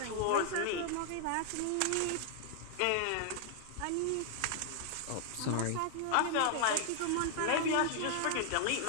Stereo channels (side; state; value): both; different; correlation 0.00